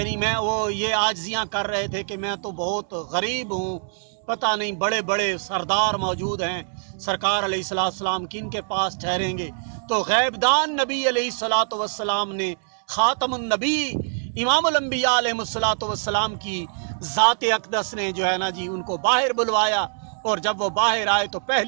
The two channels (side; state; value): left; silent; 63 dB below the other